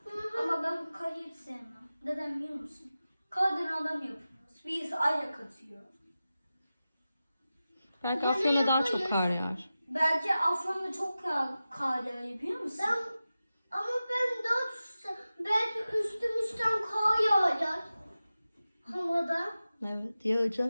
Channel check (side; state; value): both; inverted; correlation -0.94